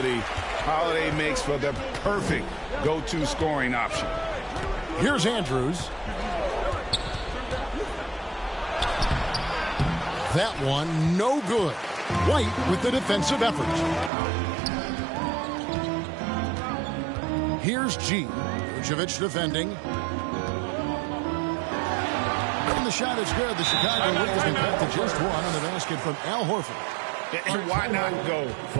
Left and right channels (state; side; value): drops out; left; at 14.1 s